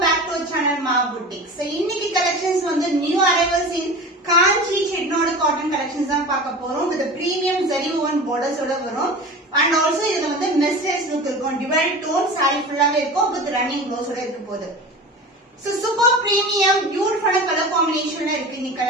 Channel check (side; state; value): both; normal; correlation 0.33